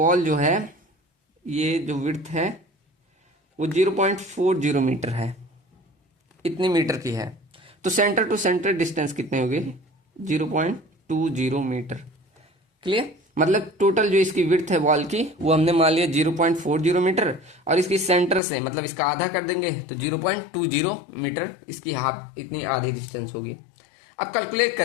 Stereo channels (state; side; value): drops out; right; at 18.4 s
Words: जो है, ये जो विड्थ है वो 0.40 मीटर है, इतनी मीटर की है। तो सेंटर टू सेंटर डिस्टेंस कितने हो गए, 0.20 मीटर। क्लियर, मतलब टोटल जो इसकी विड्थ है वॉल की वो हमने मान लिया 0.40 मीटर, और इसकी सेंटर से मतलब इसका आधा कर देंगे तो 0.20 मीटर इसकी हाफ, इतनी आधी डिस्टेंस होगी। अब कैलकुलेट